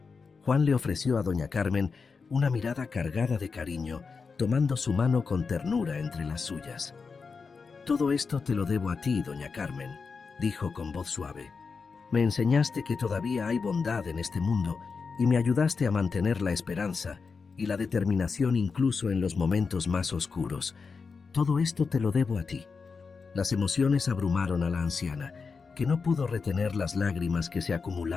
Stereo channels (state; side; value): quieter; right; 5.0 dB